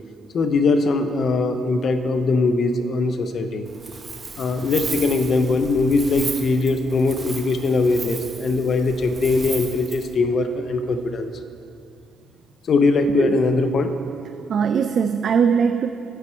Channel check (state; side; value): normal; both; correlation 0.76